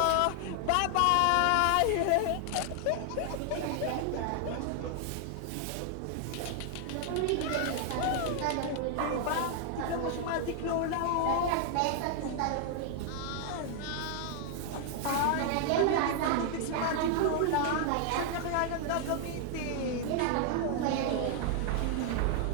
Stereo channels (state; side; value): different; both; correlation 0.00